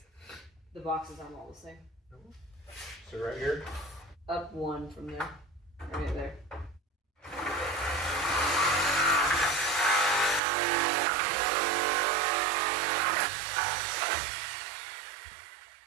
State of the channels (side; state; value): left; drops out; at 10.4 s